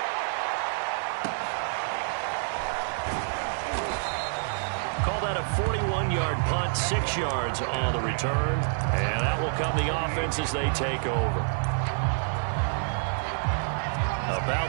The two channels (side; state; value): left; silent; digital silence